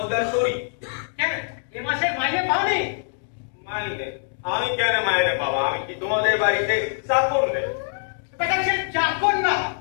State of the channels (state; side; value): silent; right; digital silence